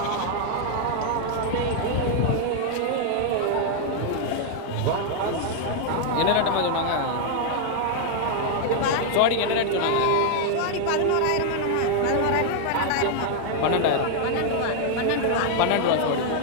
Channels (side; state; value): both; different; correlation 0.00